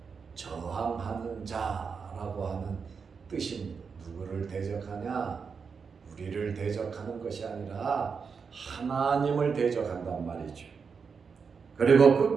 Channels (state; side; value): quieter; left; 5.7 dB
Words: 저항하는 자라고 하는 뜻입니다. 누구를 대적하냐? 우리를 대적하는 것이 아니라 하나님을 대적한단 말이죠. 그리고